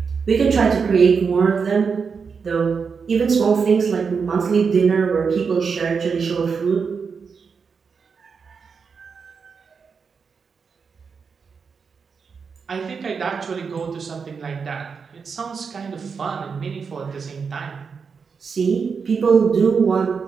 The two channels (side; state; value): left; quieter; 5.6 dB